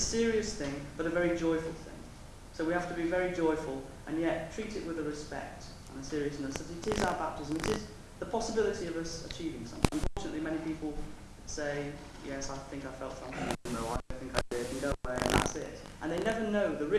thing, but a very joyful thing. So we have to be very joyful, and yet treat it with a respect and a seriousness that it is our baptism. It is the possibility of us achieving something. Unfortunately, many people say, yes, I think I felt something. No, I don't think I did. And go away, and that's it. And they never know the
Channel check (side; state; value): both; identical; correlation 1.00